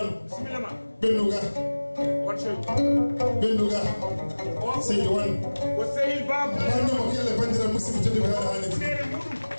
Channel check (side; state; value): both; inverted; correlation -1.00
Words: ɓennuga Seydi Wan wannemo kelle bandira musidɓe tedduɓe haɗa haaliti